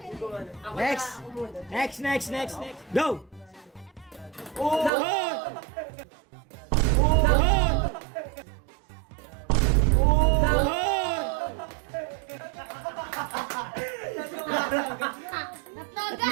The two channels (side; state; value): left; drops out; at 4.9 s